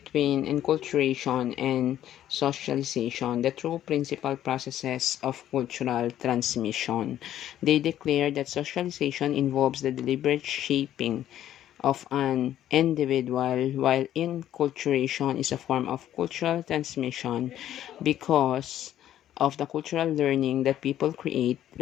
enculturation and socialization, the two principal processes of cultural transmission. They declare that socialization involves the deliberate shaping of an individual, while enculturation is a form of cultural transmission because of the cultural learning that people create,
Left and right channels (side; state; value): right; quieter; 11.8 dB